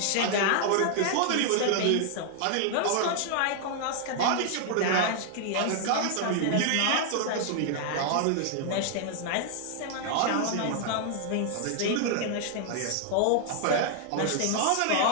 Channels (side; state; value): both; different; correlation 0.00